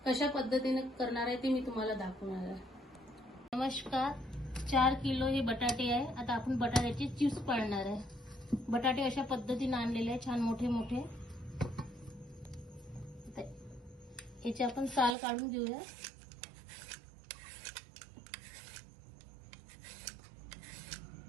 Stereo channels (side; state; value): left; drops out; at 15.2 s